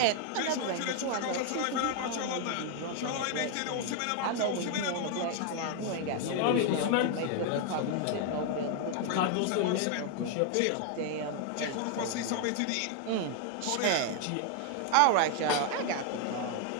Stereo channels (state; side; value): different; both; correlation 0.00